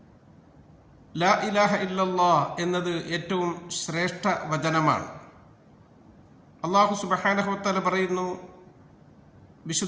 ലാ ഇലാഹ ഇല്ലല്ലാഹ് എന്നത് ഏറ്റവും ശ്രേഷ്ഠ വചനമാണ്. അല്ലാഹു സുബ്ഹാനഹു വതആല പറയുന്നു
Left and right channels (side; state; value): both; identical; correlation 1.00